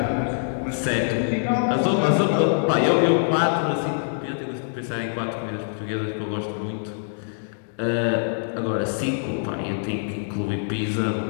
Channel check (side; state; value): right; silent; digital silence